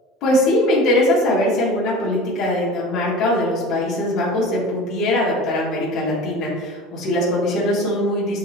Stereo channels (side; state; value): both; normal; correlation 0.37